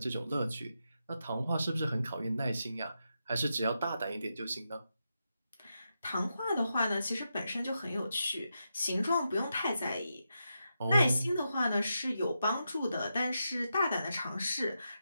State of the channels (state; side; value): inverted; both; correlation -0.86